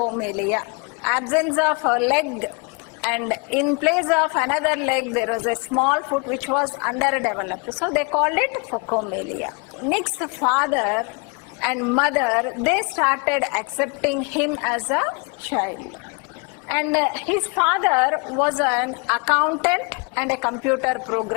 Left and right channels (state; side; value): quieter; right; 32.9 dB